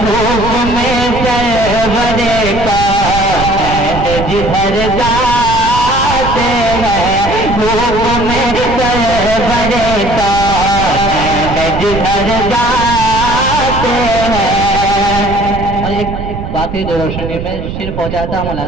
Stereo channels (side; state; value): right; noise; rumble, 7 dB below the sound